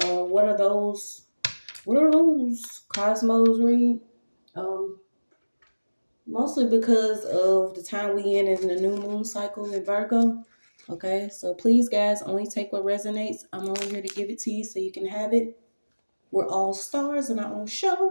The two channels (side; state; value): both; inverted; correlation -1.00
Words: what are those cosmos read? Mostly because of the time we in the new moon cycle in Virgo. Okay, so please, guys, only take what resonates. I'm only here to give it to you so you can have it. We're all stars in our own